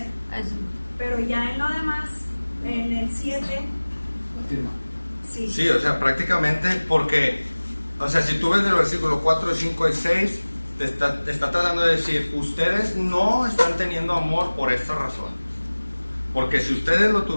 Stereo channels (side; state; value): both; inverted; correlation -1.00